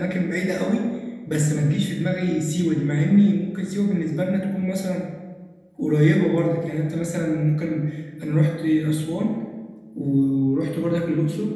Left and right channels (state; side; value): identical; both; correlation 1.00